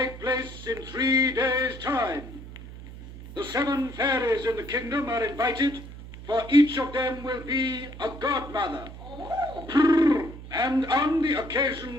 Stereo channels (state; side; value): noise; right; hum, 14 dB below the sound